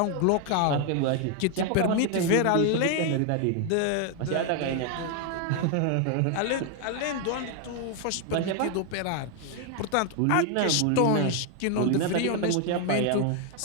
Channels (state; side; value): different; both; correlation 0.01